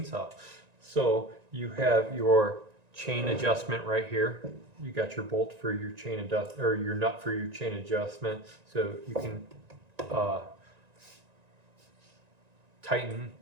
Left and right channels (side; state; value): left; late; 1.9 ms